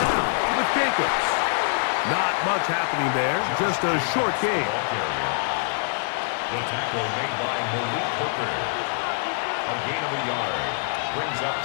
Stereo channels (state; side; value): silent; right; digital silence